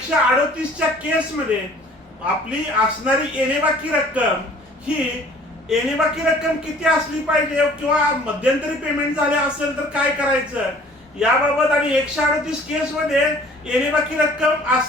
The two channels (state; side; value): normal; both; correlation 0.52